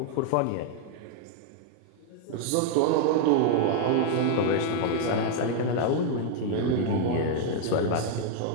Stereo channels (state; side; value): different; both; correlation 0.00